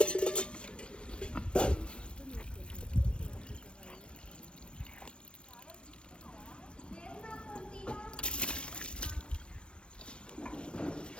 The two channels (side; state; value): right; late; 0.057 ms